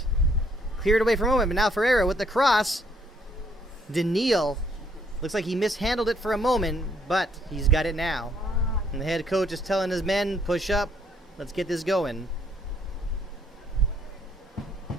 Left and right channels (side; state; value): both; normal; correlation 0.68